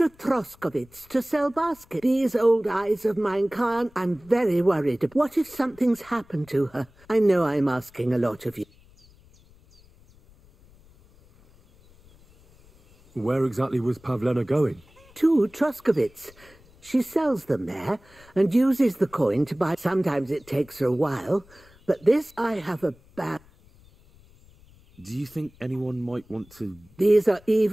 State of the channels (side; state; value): left; noise; rumble, 27 dB below the sound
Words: Troskovitz to sell baskets. These old eyes of mine can't. I'm very worried. What if something's happened to her? I know I'm asking a lot of you. Where exactly was Pavlena going? To Troskovitz. She sells them there and uses the coin to buy. Sometimes it takes her a while, but this I have a bad... Do you think anyone might want to... These are